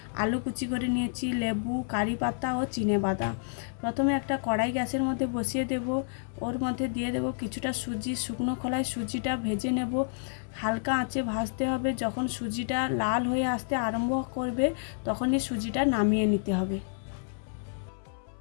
আলু কুচি করে নিয়েছি, লেবু, কারি পাতা ও চিনেবাদাম। প্রথমে একটা কড়াই গ্যাসের মধ্যে বসিয়ে দেব। ওর মধ্যে দিয়ে দেব কিছুটা সুজি। শুকনো খোলায় সুজিটা ভেজে নেব। হালকা আঁচে ভাজতে হবে। যখন সুজিটা লাল হয়ে আসতে আরম্ভ করবে তখনই সুজিটা নামিয়ে নিতে হবে।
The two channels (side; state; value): right; silent; 58 dB below the other